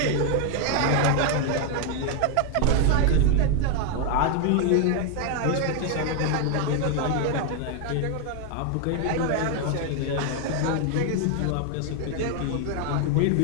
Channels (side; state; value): both; different; correlation 0.00